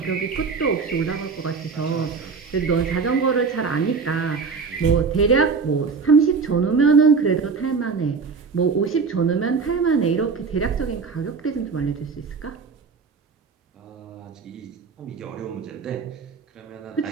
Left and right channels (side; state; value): left; quieter; 5.1 dB